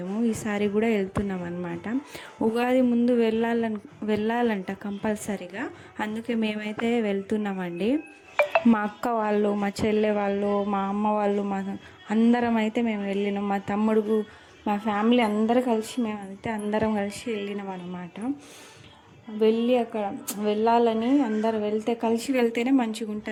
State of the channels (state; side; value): identical; both; correlation 1.00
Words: ఈసారి కూడా వెళ్తున్నాం అనమాట. ఉగాది ముందు వెళ్ళాలంట కంపల్సరీగా. అందుకే మేమైతే వెళ్తున్నామండి. మా అక్క వాళ్ళు, మా చెల్లె వాళ్ళు, మా అమ్మ వాళ్ళు, అందరం అయితే మేము వెళ్ళినాం. మా తమ్ముడు, మా ఫ్యామిలీ అందరూ కలిసి మేమైతే అందరం కలిసి వెళ్ళినాం అనమాట. వెళ్ళి అక్కడ వెళ్ళాలని అందరు కలిసి వెళ్తేనే మంచిగా